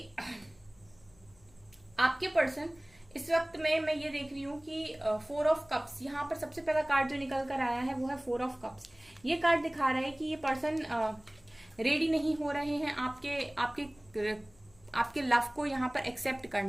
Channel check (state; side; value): noise; left; hum, 29 dB below the sound